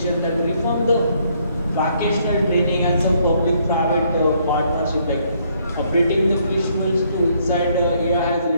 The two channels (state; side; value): inverted; both; correlation -0.69